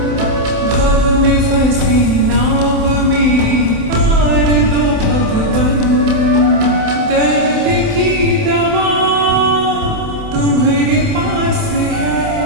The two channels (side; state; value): left; late; 27 ms